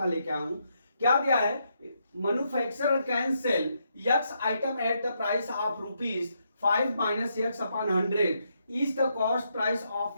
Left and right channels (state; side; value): inverted; both; correlation -0.78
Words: लेके आया हूं। क्या दिया है? Manufacturer can sell x item at the price of rupees 5 minus x upon 100 is the cost price of